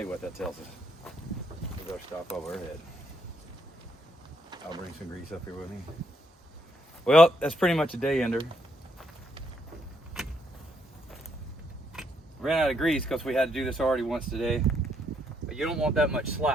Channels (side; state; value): both; normal; correlation 0.74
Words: you what that tells us. We better stop over our head. I'll bring some grease up here with me. Well, that's pretty much a day ender. Ran out of grease because we had to do this already once today. But you don't want that much